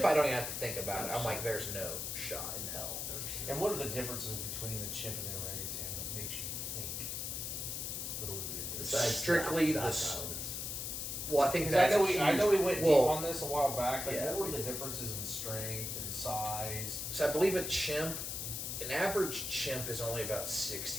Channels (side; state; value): left; noise; hiss, 4 dB below the sound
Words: I don't even have to think about it. I'm like, there's no shot in hell. And what are the differences between the chimp and the orangutan that makes you strictly the. Well, I think that's I know we went deep on this a while back. Like, yeah. what were the differences in strength and size? So I believe an average chimp is only about